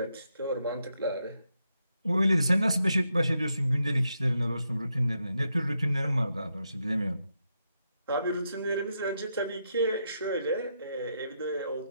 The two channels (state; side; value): inverted; both; correlation -0.82